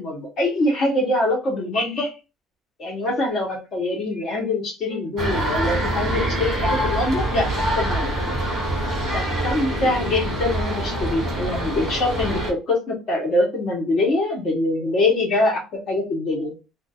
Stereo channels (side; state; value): both; normal; correlation 0.54